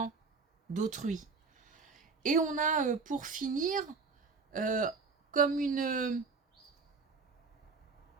d'autrui. Et on a, pour finir, comme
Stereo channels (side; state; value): left; quieter; 4.6 dB